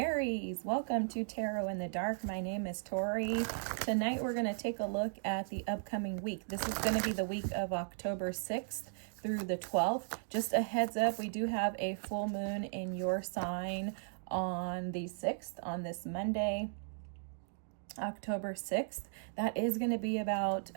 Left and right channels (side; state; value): left; silent; digital silence